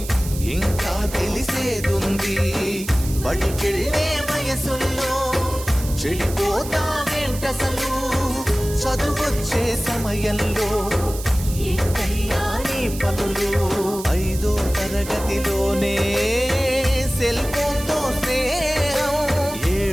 ఇంకా తెలిసేదుంది బడికెళ్ళే వయసుల్లో చెడిపోతావేంటసలు చదువొచ్చే సమయంలో ఏంటయ్యా నీ పనులు 5వ తరగతిలోనే సెల్ ఫోన్తో స్నేహం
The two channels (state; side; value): noise; right; hiss, 12 dB below the sound